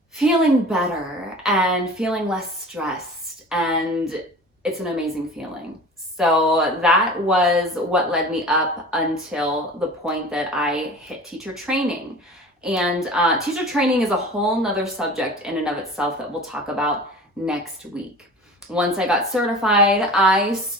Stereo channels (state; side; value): normal; both; correlation 0.39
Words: feeling better and feeling less stressed. And it's an amazing feeling. So that was what led me up until the point that I hit teacher training. And teacher training is a whole nother subject in and of itself that we'll talk about next week. Once I got certified, I